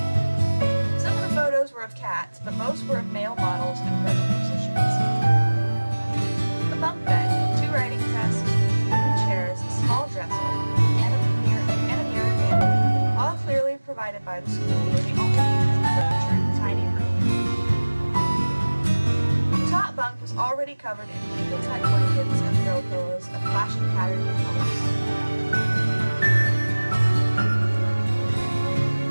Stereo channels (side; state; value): both; inverted; correlation -1.00